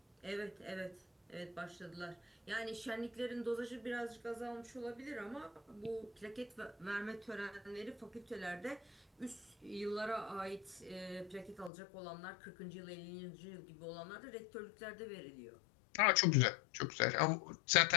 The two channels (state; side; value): drops out; right; at 11.7 s